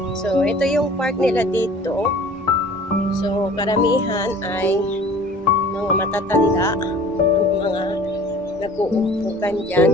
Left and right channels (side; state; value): both; normal; correlation 0.47